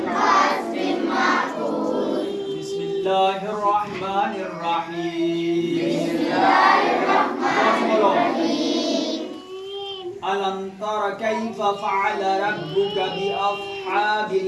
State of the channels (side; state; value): both; identical; correlation 1.00